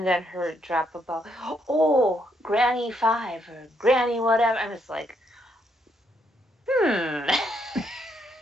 then her drop about, oh, Granny 5 or Granny whatever. I'm just like,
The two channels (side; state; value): both; normal; correlation 0.75